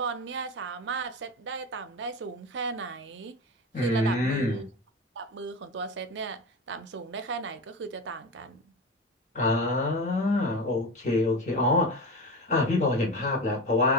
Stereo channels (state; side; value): normal; both; correlation 0.25